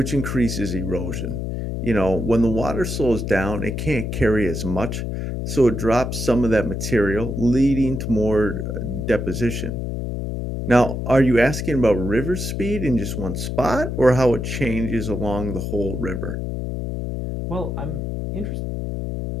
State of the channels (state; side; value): noise; left; hum, 3 dB below the sound